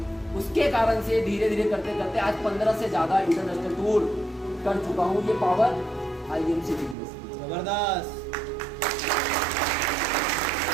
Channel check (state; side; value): drops out; left; at 7.0 s